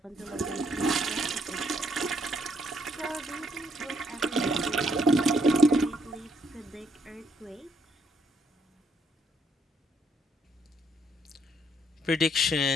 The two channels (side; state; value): both; normal; correlation 0.70